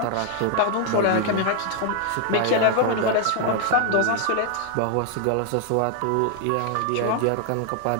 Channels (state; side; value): different; both; correlation 0.00